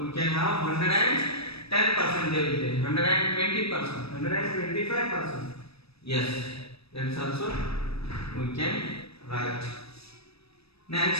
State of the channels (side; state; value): right; late; 0.78 ms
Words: we can have 110% there will be. 120%. 125%. Yes, that is also we can write.